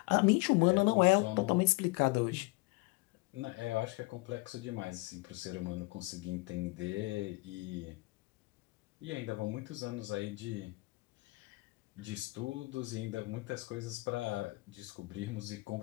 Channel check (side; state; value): right; quieter; 24.3 dB